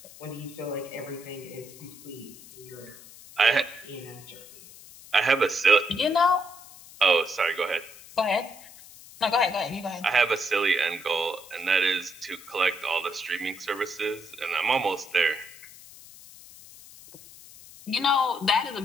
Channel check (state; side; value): noise; left; hiss, 19 dB below the sound